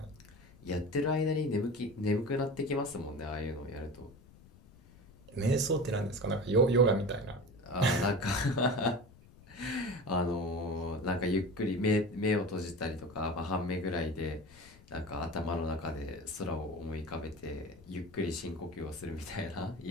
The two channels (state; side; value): noise; left; rumble, 23 dB below the sound